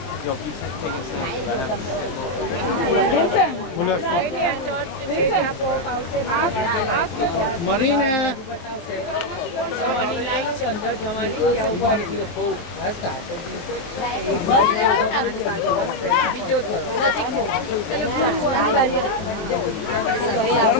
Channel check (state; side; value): late; right; 23 ms